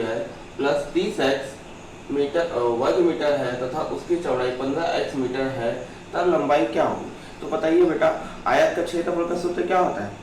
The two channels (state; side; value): identical; both; correlation 1.00